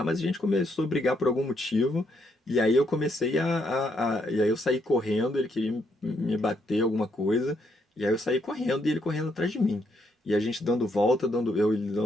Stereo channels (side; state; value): both; normal; correlation 0.75